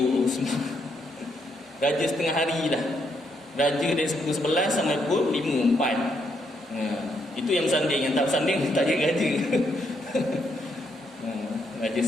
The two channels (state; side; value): normal; both; correlation 0.76